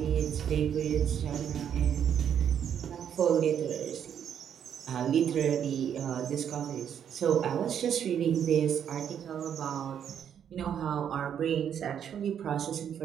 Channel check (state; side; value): quieter; left; 8.8 dB